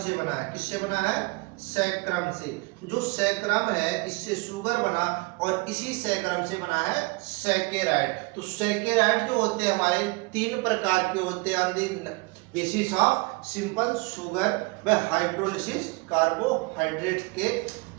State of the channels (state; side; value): quieter; left; 27.0 dB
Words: बना है। किससे बना है? सैक्रम से। जो सैक्रम है इससे शुगर बना और इसी सैक्रम से बना है सैकेराइड। तो सैकेराइड जो होते हैं हमारे 3 प्रकार के होते हैं on the basis of simple sugar व हाइड्रोलिसिस कार्बोहाइड्रेट के।